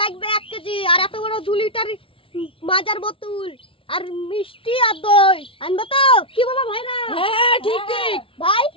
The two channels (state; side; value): late; right; 0.26 ms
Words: লাগবে 1 কেজি, আর এত বড় 2 লিটার মাজার বোতল, আর মিষ্টি আর দই আনবো তো? কি বলো ভাইরা? হ্যাঁ ঠিক ঠিক ভাই,